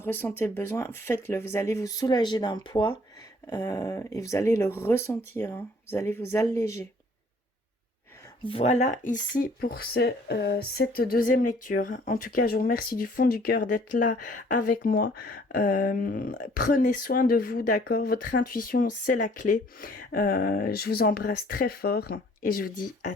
le besoin, faites-le. Vous allez vous soulager d'un poids et vous allez le ressentir. Hein. Vous allez vous alléger. Voilà ici pour cette deuxième lecture. En tout cas, je vous remercie du fond du cœur d'être là avec moi. Prenez soin de vous, d'accord? Votre intuition, c'est la clé. Je vous embrasse très fort et je vous dis à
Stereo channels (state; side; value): normal; both; correlation 0.58